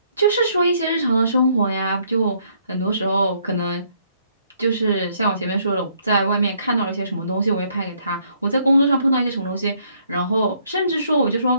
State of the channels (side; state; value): both; inverted; correlation -0.68